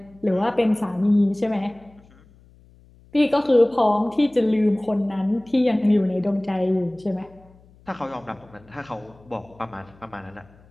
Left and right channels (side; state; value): left; noise; hum, 27 dB below the sound